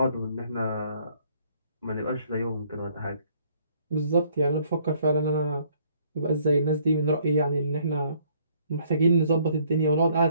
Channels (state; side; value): inverted; both; correlation -0.63